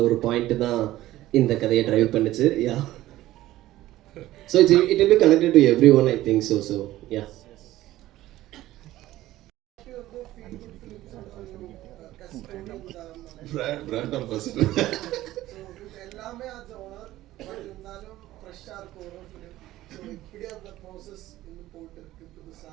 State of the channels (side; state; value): left; quieter; 15.5 dB